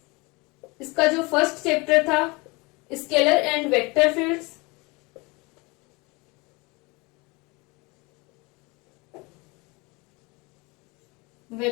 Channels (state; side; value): quieter; right; 26.1 dB